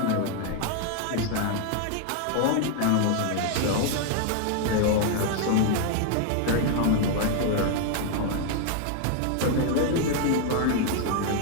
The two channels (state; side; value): different; both; correlation 0.00